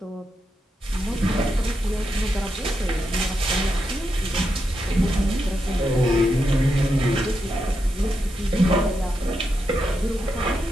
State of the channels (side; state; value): both; normal; correlation 0.84